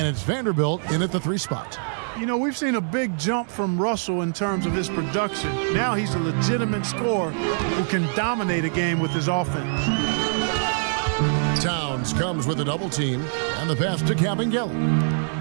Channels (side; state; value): left; silent; digital silence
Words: it's Vanderbilt in at the 3 spot. You know, we've seen a big jump from Russell in terms of his production. Now he's a legitimate scorer who can dominate a game with his offense. Towns comes with a double team, and the pass to Kabengele.